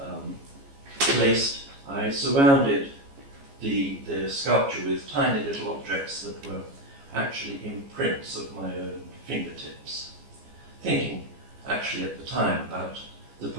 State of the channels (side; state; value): left; late; 14 ms